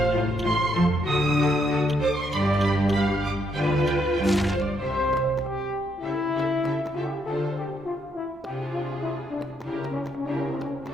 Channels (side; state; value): both; normal; correlation 0.75